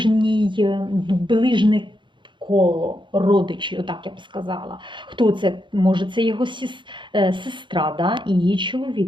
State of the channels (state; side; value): late; left; 0.23 ms